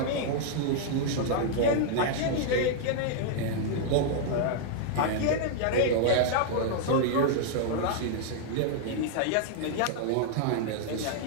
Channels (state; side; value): different; both; correlation -0.01